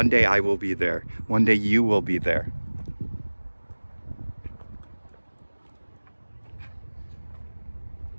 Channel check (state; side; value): inverted; both; correlation -1.00